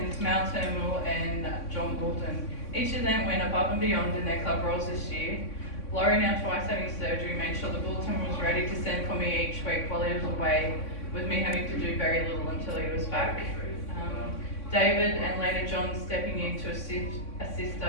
Mal Turnbull and John Goulton. Each of them went above and beyond in their club roles this year. Laurie, now twice having surgery, made sure the bulletin was ready to send for me each week while he was away, with me having to do very little until he was back. David and later John stepping in to assist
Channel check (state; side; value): late; right; 3.6 ms